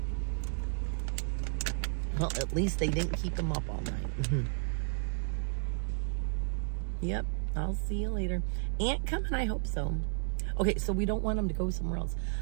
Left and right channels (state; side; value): silent; left; digital silence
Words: Well, at least they didn't keep him up all night. Yep, I'll see you later. Aunt coming? I hope so. Okay, so we don't want him to go somewhere else.